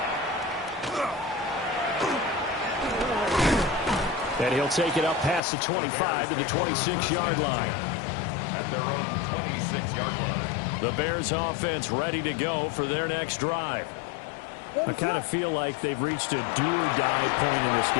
And he'll take it up past the 25 to the 26-yard line. At their own 26-yard line. The Bears offense ready to go for their next drive. I kind of feel like they've reached a do-or-die point in this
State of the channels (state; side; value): drops out; right; at 5.4 s